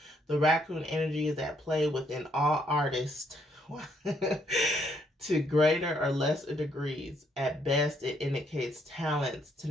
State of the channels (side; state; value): both; normal; correlation 0.71